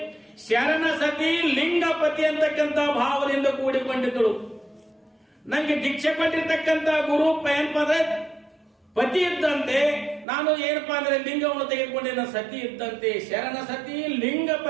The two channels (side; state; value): left; drops out; at 10.2 s